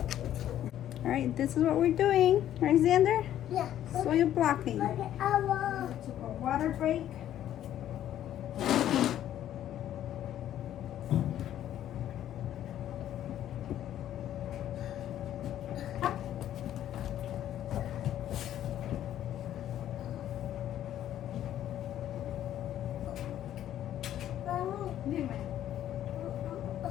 All right, this is what we're doing. Right, Xander? Yeah. Soil blocking. Look at our. Took a water break. Dime.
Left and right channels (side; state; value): right; quieter; 11.6 dB